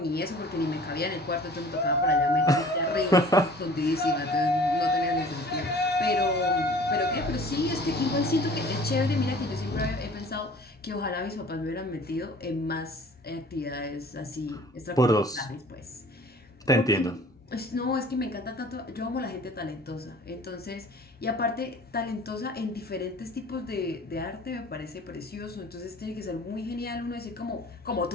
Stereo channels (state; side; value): normal; both; correlation 0.48